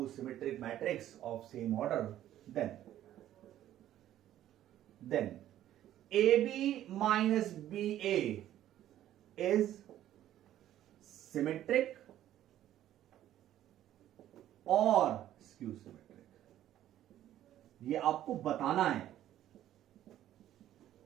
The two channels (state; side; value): quieter; left; 12.4 dB